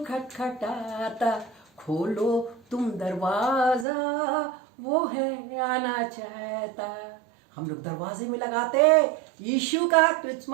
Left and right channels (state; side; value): drops out; left; at 3.9 s